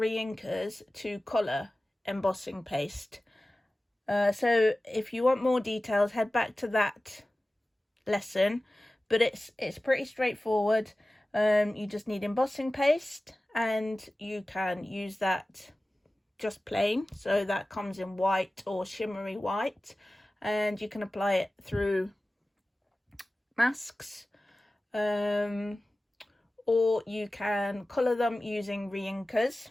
to colour embossing paste. So if you want more details, head back to that lesson, but it's pretty straightforward. You just need embossing paste, and you can use that just plain, so that comes in white or shimmery white, and you can apply it through masks, or you can colour them using reinkers,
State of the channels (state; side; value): normal; both; correlation 0.96